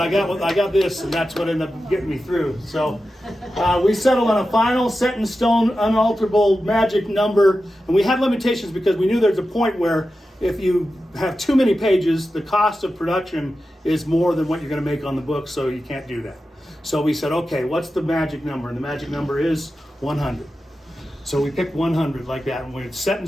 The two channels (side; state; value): both; normal; correlation 0.92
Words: I got this, and that's what ended up getting me through. So we settled on a final, set in stone, unalterable magic number, and we had limitations because we knew there's a point where if you have too many pages, the cost of production is more than what you're going to make on the book, so you can't do that. So we said, okay, what's the magic number? And the magic number is 100. So we picked 100 like that, and when it's set in